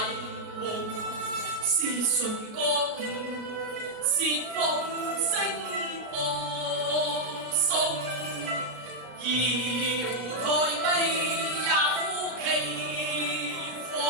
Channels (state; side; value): late; left; 33 ms